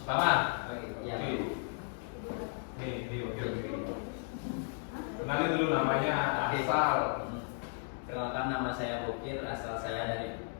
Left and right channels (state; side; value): silent; right; 55 dB below the other